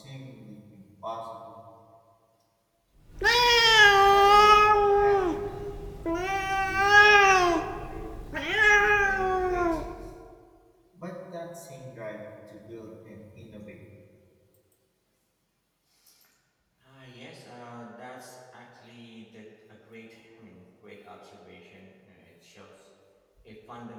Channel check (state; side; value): identical; both; correlation 1.00